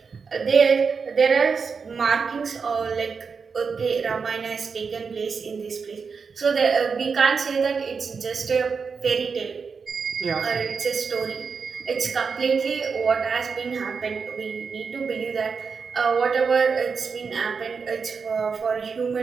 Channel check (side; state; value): left; quieter; 5.4 dB